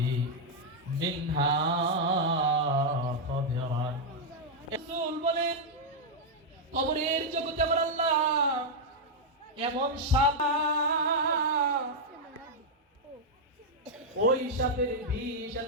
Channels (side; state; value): both; normal; correlation -0.03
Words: মিনহা খাদিরান। রাসূল বলেন, কবরের জগতে আমার আল্লাহ এমন সাপ, ওই সাপের বিষ